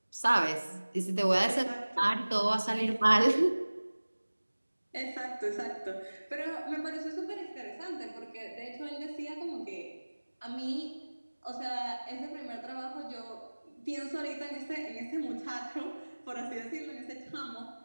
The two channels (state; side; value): inverted; both; correlation -1.00